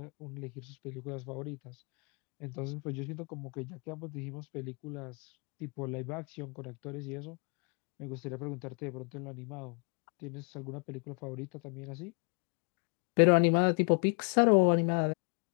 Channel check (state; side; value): quieter; right; 37.0 dB